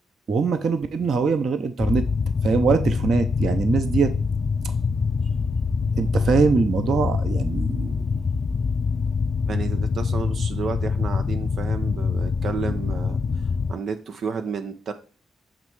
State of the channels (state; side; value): normal; both; correlation 0.80